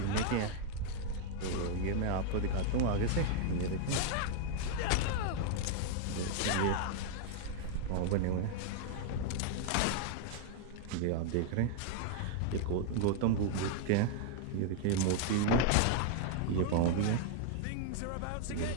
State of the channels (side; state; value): both; different; correlation 0.00